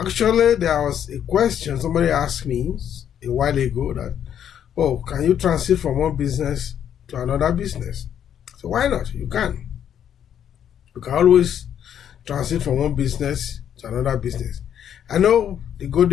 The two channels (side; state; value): right; quieter; 9.4 dB